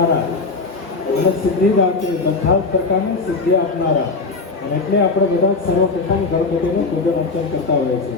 અને સિદ્ધિદાતા, બધા જ પ્રકારની સિદ્ધિ આપનારા. અને એટલે આપણે બધા સર્વપ્રથમ ગણપતિનું પૂજન અર્ચન કરતા હોઈએ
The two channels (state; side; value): quieter; right; 3.9 dB